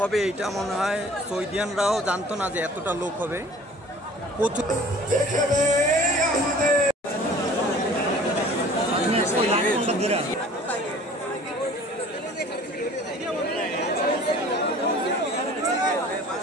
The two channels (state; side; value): normal; both; correlation 0.48